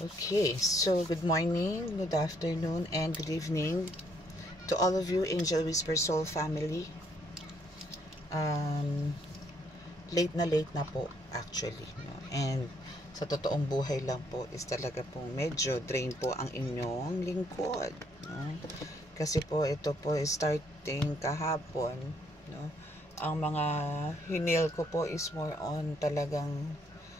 so good morning, good afternoon, and good evening to all of you Angel Whisper Soul family. Late na po actually, no? And sa totoong buhay lang po is talaga pong medyo drain po ang inyong lingkod, no? Kasi po ito po is starting kahapon, no? Ang mga hinil ko po is more on talagang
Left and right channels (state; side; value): normal; both; correlation 0.69